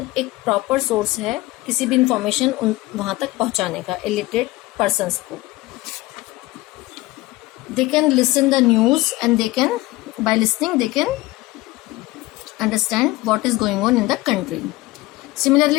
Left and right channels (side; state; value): right; quieter; 19.8 dB